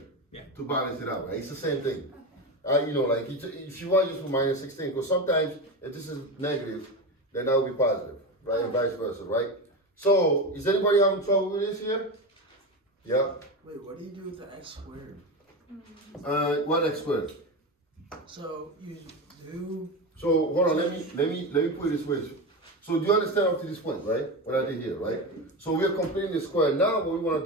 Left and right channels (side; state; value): both; normal; correlation 0.20